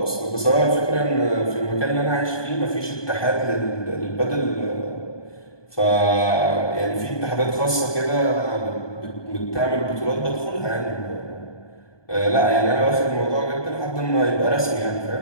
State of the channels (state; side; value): late; right; 1.2 ms